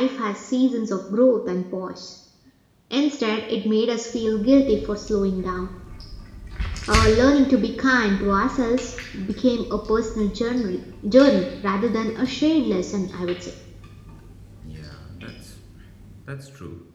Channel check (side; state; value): both; identical; correlation 1.00